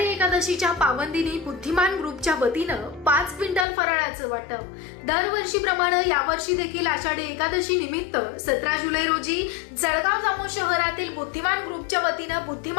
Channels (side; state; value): right; drops out; at 3.7 s